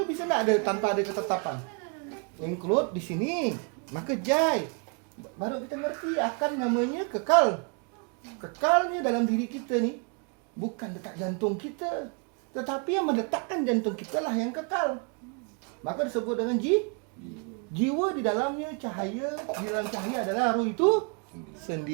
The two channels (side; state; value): left; quieter; 35.8 dB